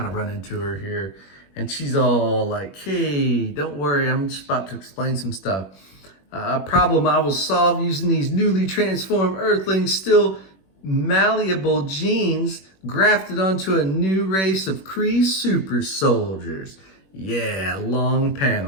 of run into her here, and she's all like, hey, don't worry, I'm just about to explain some stuff. A problem I will solve using these newly transformed Earthlings, still malleable genes grafted onto a new race of Kree super soldiers. Yeah, long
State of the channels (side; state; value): right; late; 21 ms